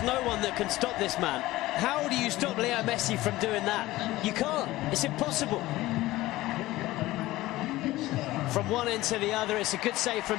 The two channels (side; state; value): right; quieter; 17.5 dB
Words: no one that can stop this man. How do you stop Leo Messi from doing that? You can't. It's impossible. From one end to the other, it's a good save